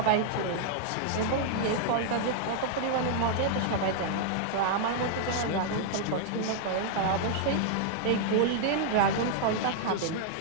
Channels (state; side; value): different; both; correlation -0.01